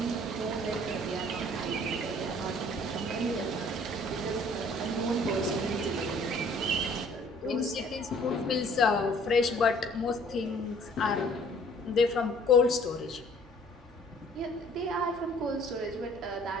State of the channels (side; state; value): both; normal; correlation 0.55